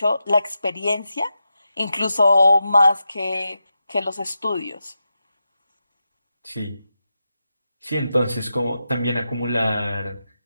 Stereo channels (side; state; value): both; inverted; correlation -0.89